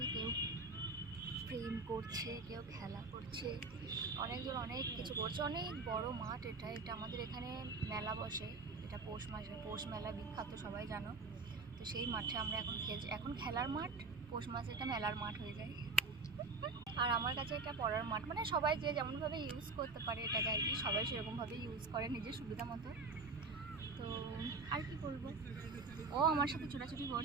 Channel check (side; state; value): left; quieter; 3.9 dB